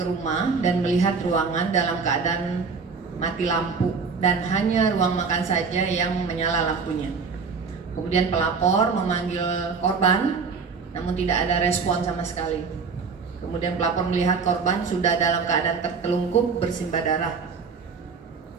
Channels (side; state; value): left; quieter; 5.2 dB